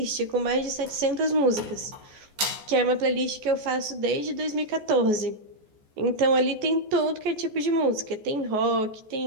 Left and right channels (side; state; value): left; late; 14 ms